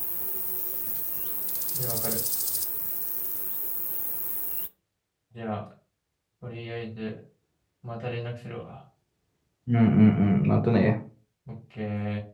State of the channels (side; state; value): both; identical; correlation 1.00